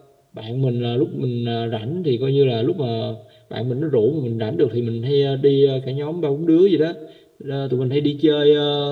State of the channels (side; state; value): both; identical; correlation 1.00